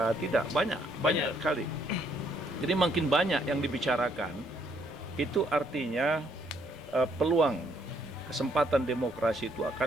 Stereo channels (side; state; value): both; normal; correlation 0.68